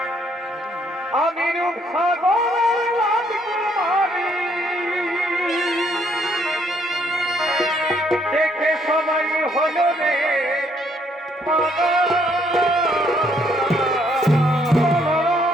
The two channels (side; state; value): both; normal; correlation 0.68